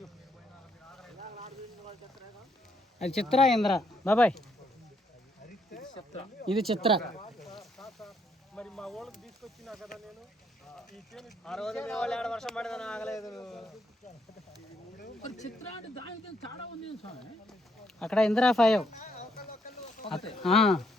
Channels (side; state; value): both; normal; correlation 0.72